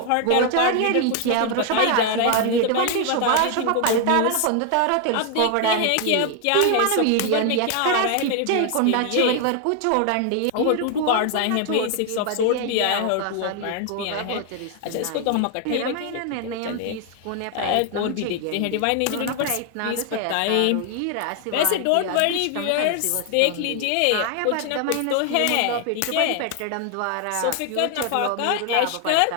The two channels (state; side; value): different; both; correlation 0.00